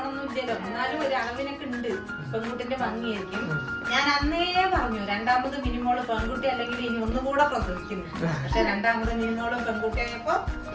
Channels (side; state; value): both; identical; correlation 1.00